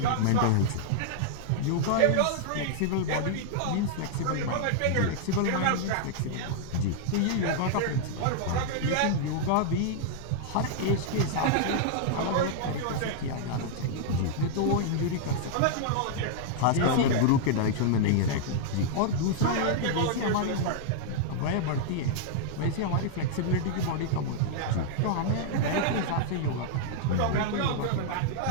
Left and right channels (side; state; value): both; different; correlation -0.01